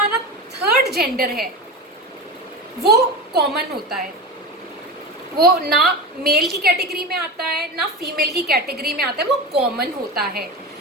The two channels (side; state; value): both; normal; correlation 0.25